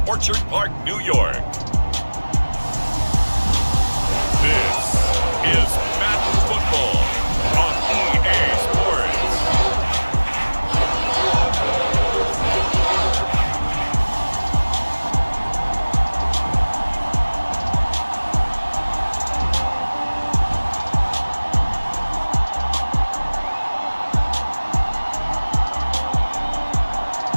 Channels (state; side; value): inverted; both; correlation -1.00